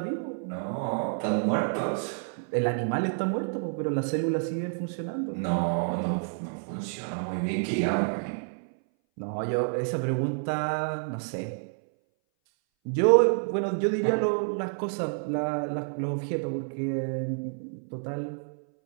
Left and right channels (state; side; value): silent; left; 59 dB below the other